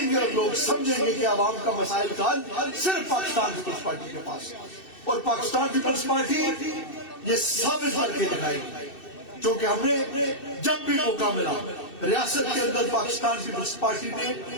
گے اور لوگ سمجھیں گے کہ عوام کا مسائل کا حل صرف پاکستان پیپلز پارٹی کے پاس ہے. اور پاکستان پیپلز پارٹی یہ ثابت کر کے دکھائے گی کیونکہ ہم نے جب بھی موقع ملا ریاست کے اندر پاکستان پیپلز پارٹی نے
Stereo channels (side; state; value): right; late; 2.6 ms